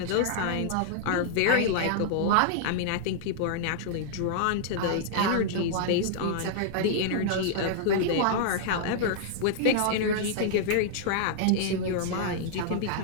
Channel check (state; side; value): different; both; correlation -0.01